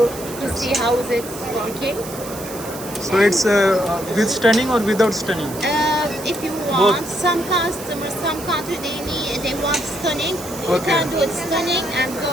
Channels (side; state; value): right; noise; hiss, 13 dB below the sound